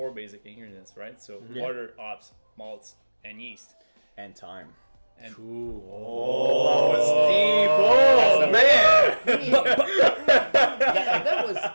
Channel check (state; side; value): inverted; both; correlation -1.00